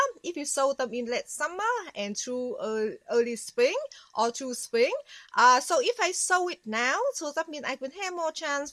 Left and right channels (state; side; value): identical; both; correlation 1.00